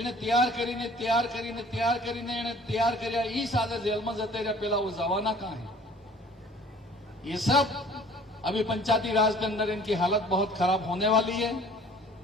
तैयार કરીને तैयार કર્યા ई सादे जेल में जते रहे, पहला वो जवाना कहां है? ये सब अभी पंचायती राज के अंदर इनकी हालत बहुत खराब होने वाली है।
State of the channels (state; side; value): normal; both; correlation 0.51